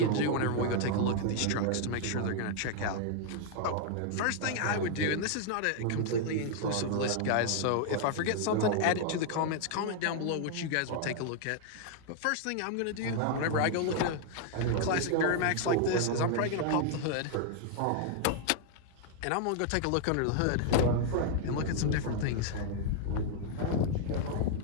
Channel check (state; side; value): different; both; correlation 0.00